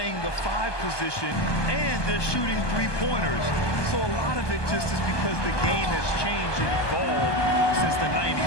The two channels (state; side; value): late; right; 1.2 ms